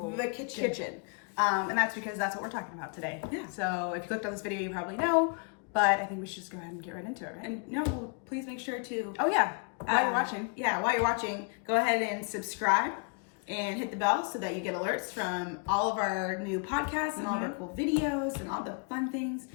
kitchen. And that's because that's what we're talking about today. Yeah. So if you clicked on this video, you probably know, but I think we should just go ahead and get right into it, right? And no, please make sure to. Oh yeah, while you're watching. Yeah, while you're watching, go ahead and subscribe and hit the bell so that you get alerts from all of our new podcasts and all of our cool videos and all the fun things.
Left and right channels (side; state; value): right; quieter; 35.4 dB